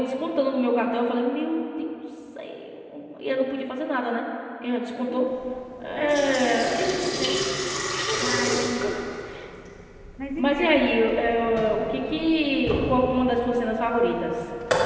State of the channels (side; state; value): both; identical; correlation 1.00